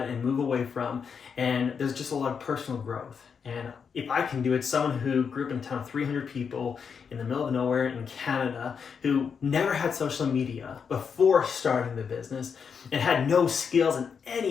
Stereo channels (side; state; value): right; quieter; 6.4 dB